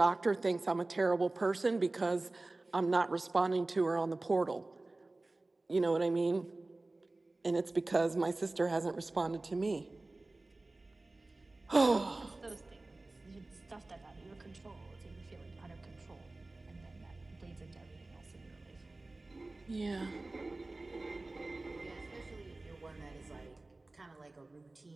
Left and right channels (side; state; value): left; quieter; 3.0 dB